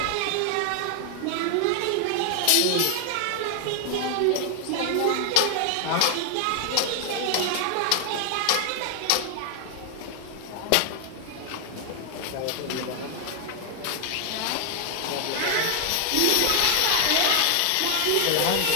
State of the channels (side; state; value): both; different; correlation 0.00